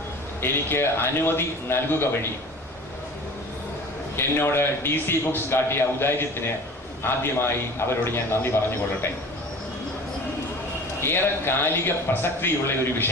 എനിക്ക് അനുമതി നൽകുക വഴി എന്നോട് DC ബുക്സ് കാട്ടിയ ഔദാര്യത്തിന് ആദ്യമായി അവരോട് ഞാൻ നന്ദി പറഞ്ഞുകൊള്ളട്ടെ. ഏറെ കാലിക പ്രസക്തിയുള്ള ഒരു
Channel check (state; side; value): normal; both; correlation 0.40